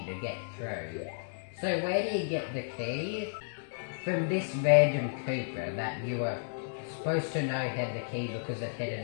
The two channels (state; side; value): silent; right; digital silence